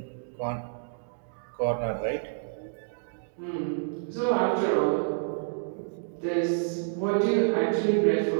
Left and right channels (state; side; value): silent; left; digital silence